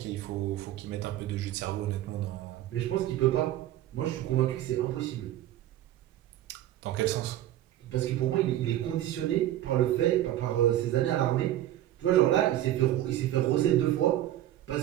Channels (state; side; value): quieter; left; 13.3 dB